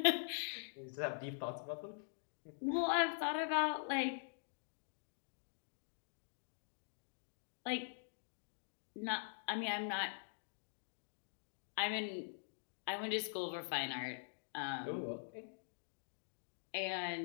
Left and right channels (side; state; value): right; silent; digital silence